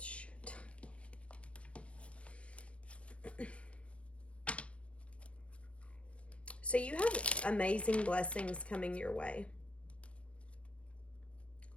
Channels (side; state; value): right; late; 0.061 ms